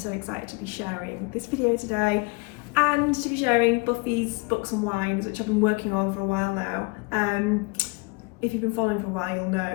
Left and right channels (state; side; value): quieter; right; 28.7 dB